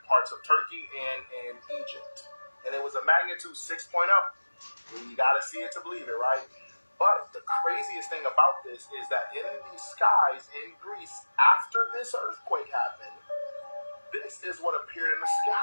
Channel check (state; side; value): inverted; both; correlation -1.00